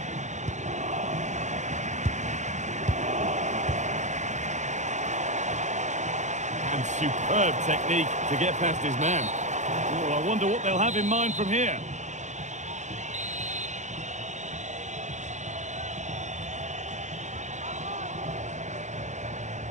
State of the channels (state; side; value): late; left; 0.34 ms